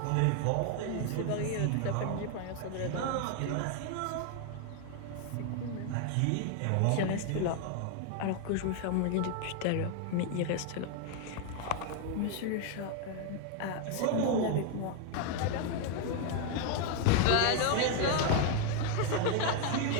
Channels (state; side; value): different; both; correlation 0.00